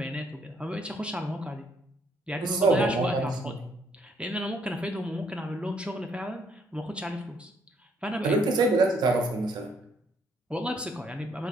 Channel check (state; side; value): normal; both; correlation 0.68